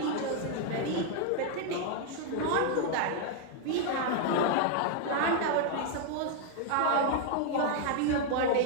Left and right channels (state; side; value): different; both; correlation 0.00